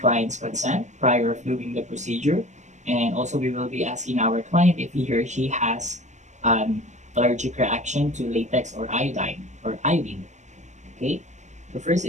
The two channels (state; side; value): late; left; 0.34 ms